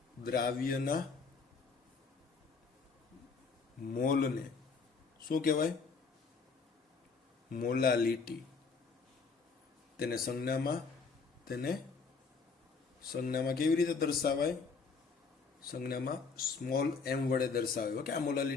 દ્રાવ્યના મોલને શું કહેવાય? મોલાલિટી. તેને સંજ્ઞામાં કેવી રીતે દર્શાવાય? સંજ્ઞામાં સ્મોલ m વડે દર્શાવાય. ઓકે, આ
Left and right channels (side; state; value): right; quieter; 4.9 dB